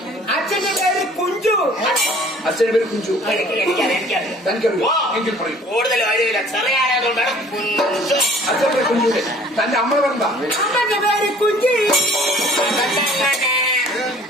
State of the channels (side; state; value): both; normal; correlation 0.52